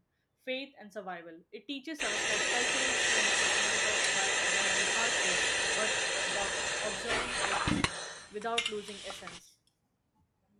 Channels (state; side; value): identical; both; correlation 1.00